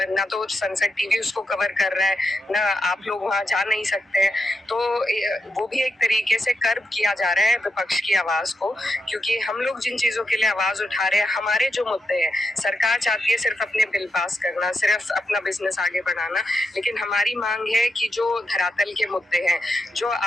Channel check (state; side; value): normal; both; correlation 0.85